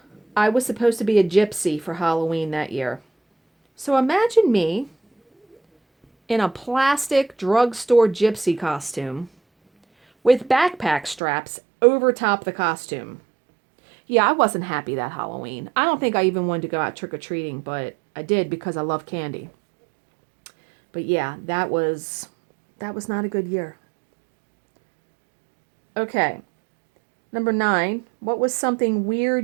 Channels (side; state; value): left; drops out; at 11.2 s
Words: I was supposed to be a gypsy for Halloween that year. So imagine me in a plastic drugstore gypsy costume with backpack straps over top the costume. Yeah, I wasn't happy that Halloween. I don't think I even wanted to go out trick-or-treating, but I did because I love candy. But yeah, that was not a good year. Okay. Number 9, what was something